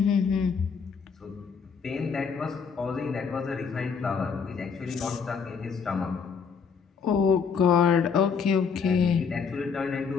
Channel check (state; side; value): quieter; right; 6.0 dB